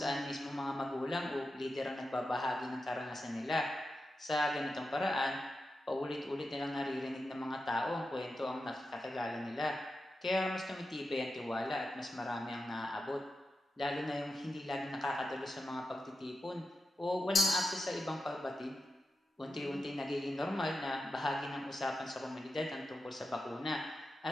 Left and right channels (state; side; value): normal; both; correlation 0.91